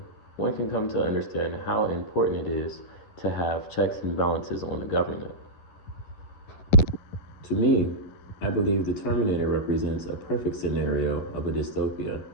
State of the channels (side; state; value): right; late; 11 ms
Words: one can come to understand how important it is to have checks and balances on the government. To me, I believe the Terminator represents a perfect scenario of a dystopia.